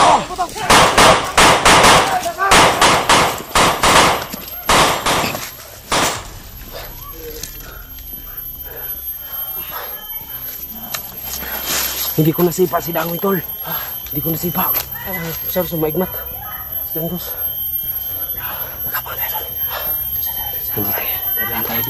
Hindi ko nasipa si Dangoy, tol. Hindi ko nasipa. Sir, sumaigmat. Si Dangos. Nakapang tayo, tol. Hindi tayo. Dadaan tayo.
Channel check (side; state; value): both; identical; correlation 1.00